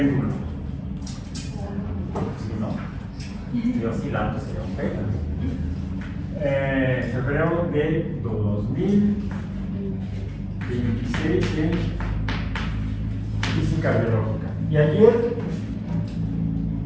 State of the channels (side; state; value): both; identical; correlation 1.00